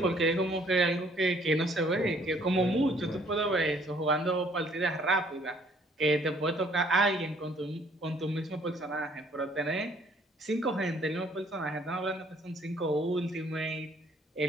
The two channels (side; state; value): both; normal; correlation 0.62